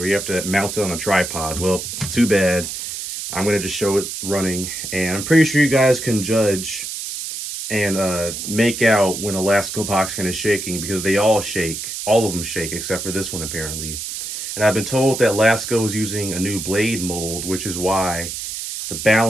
you have to mount it on a tripod. Well, too bad. I'm going to just show it running, and I'm pretty sure you guys can judge and make out when a Lasko box fan is shaking, because they all shake. All of them shake, except for this one, apparently. And I've been told that Lasko is using a new blade mold, which is why the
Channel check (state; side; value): noise; right; hiss, 6 dB below the sound